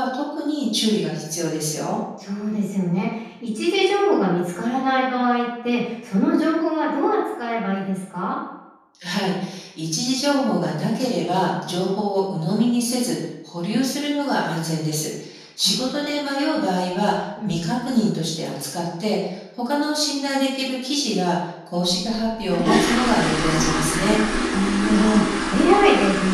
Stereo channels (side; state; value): both; identical; correlation 1.00